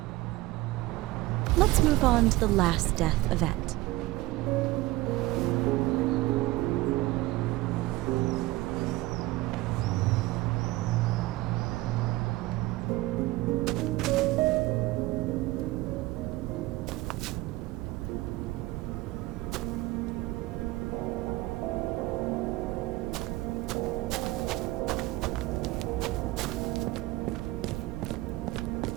Let's move on to the last death event.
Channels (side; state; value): left; quieter; 19.1 dB